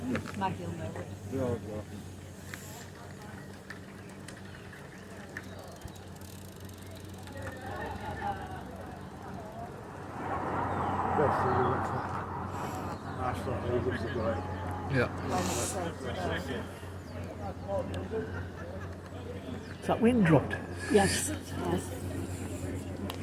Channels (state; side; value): identical; both; correlation 1.00